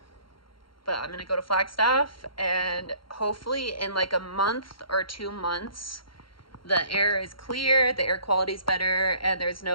I'm gonna go to Flagstaff, and hopefully in like a month or 2 months, the air is clear, the air quality is better, and there's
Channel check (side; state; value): right; late; 0.73 ms